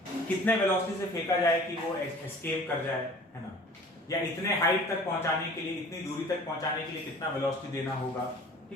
कितने वेलोसिटी से फेंका जाए कि वो एस्केप कर जाए, है ना, या इतने हाइट तक पहुंचाने के लिए, इतनी दूरी तक पहुंचाने के लिए कितना वेलोसिटी देना होगा।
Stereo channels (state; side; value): normal; both; correlation 0.46